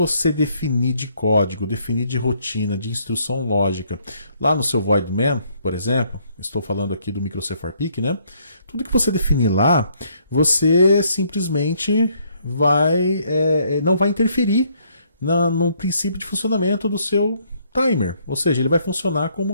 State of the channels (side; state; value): both; inverted; correlation -0.68